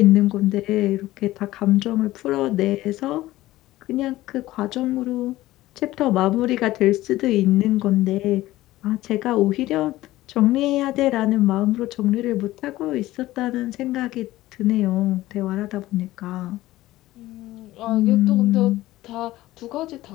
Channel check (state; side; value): quieter; right; 16.6 dB